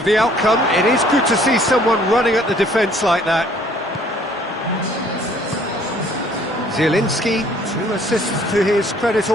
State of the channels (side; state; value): both; normal; correlation 0.59